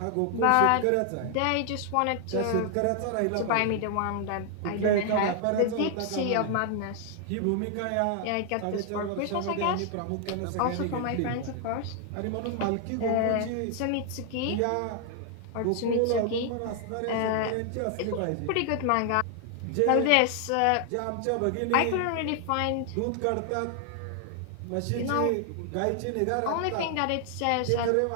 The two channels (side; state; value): both; different; correlation 0.00